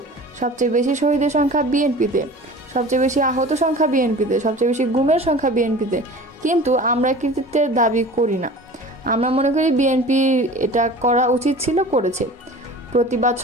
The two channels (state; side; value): normal; both; correlation 0.40